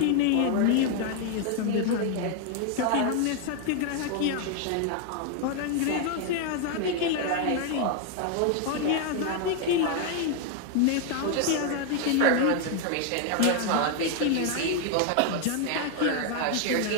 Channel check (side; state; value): both; different; correlation 0.00